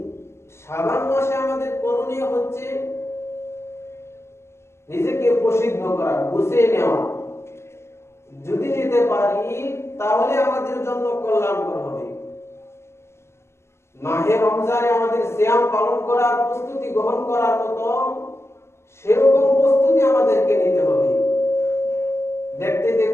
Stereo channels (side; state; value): right; late; 0.13 ms